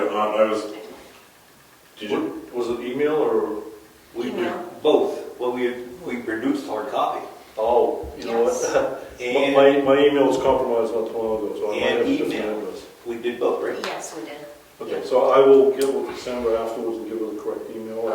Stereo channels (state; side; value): identical; both; correlation 1.00